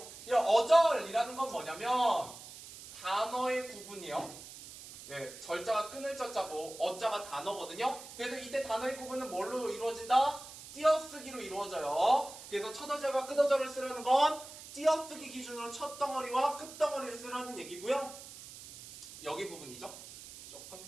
이런 어절이라는 건 뭐냐면 단어의 구분이요. 절자가 끊을 자자고 어자가 단어거든요. 그래서 이때 단어의 구분은 뭘로 이루어진다? 띄어쓰기로 이루어져요. 그래서 첫어절과 끝어절을 쓰라는 건 띄어쓰기 기준으로 첫 덩어리와 끝 덩어리를 쓰라는 얘기고요. 여기 부분이죠. 조금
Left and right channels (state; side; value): noise; right; hiss, 15 dB below the sound